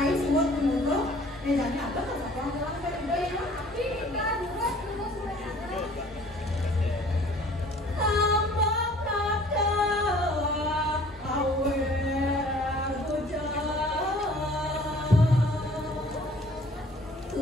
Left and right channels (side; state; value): both; normal; correlation 0.53